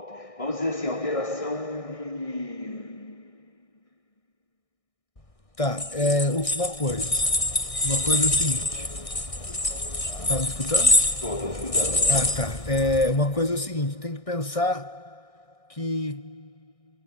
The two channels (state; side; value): late; right; 1.6 ms